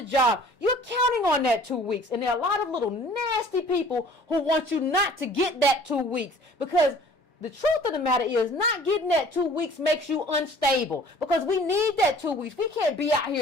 job, you're counting on that 2 weeks. And there are a lot of little nasty people who want you not to get that 2 weeks. Because The truth of the matter is not getting that 2 weeks makes you unstable, because we need that 2 weeks. We can't be out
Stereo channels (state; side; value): normal; both; correlation 0.51